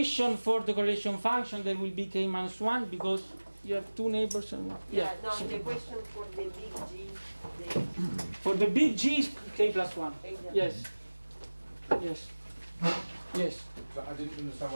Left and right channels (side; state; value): both; inverted; correlation -1.00